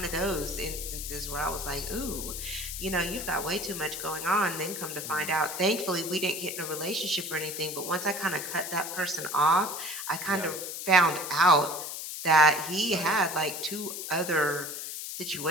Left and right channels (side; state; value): left; noise; hiss, 6 dB below the sound